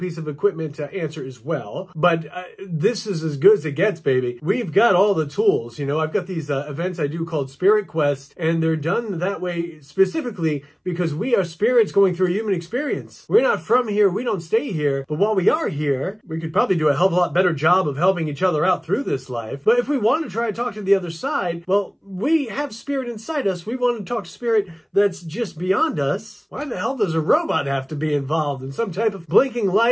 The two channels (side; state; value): both; identical; correlation 1.00